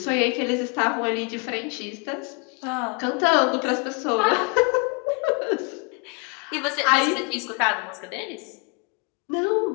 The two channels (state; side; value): quieter; right; 33.0 dB